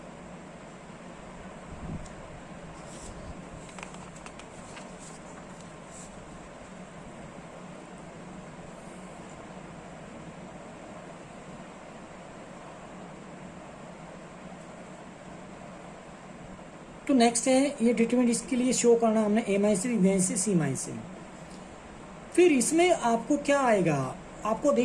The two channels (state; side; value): identical; both; correlation 1.00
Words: तो नेक्स्ट है ये डिटरमिनेंट, इसके लिए शो करना हमने a minus b minus c minus से। फिर इसमें आपको क्या आएगा, आपको